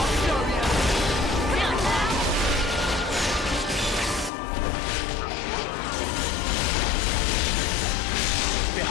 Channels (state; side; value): drops out; right; at 4.3 s